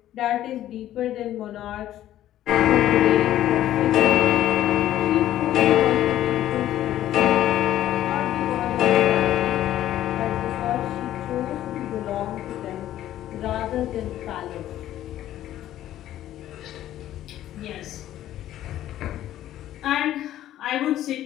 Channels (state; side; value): quieter; right; 12.8 dB